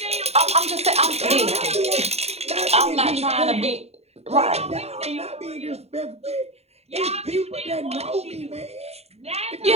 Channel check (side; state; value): left; late; 0.30 ms